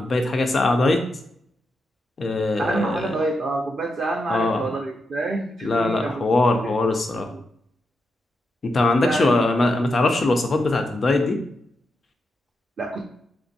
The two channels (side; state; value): both; normal; correlation 0.85